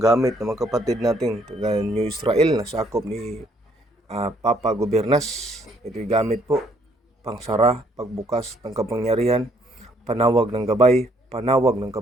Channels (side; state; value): both; normal; correlation 0.67